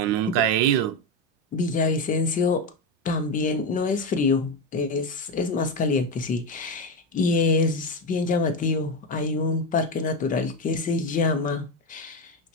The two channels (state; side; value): normal; both; correlation 0.12